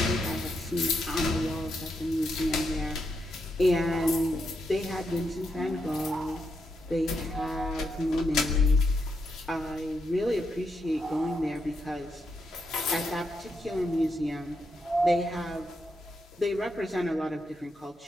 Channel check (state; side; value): normal; both; correlation 0.82